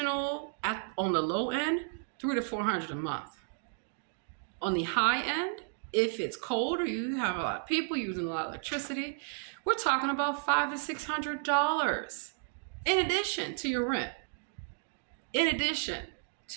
on the low end, $300 to $400 a month. On the high end, if it's cold or you have a lot of people using a lot of electricity, we're talking about $500 to $600 in addition to your rent. In addition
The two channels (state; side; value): silent; left; 56 dB below the other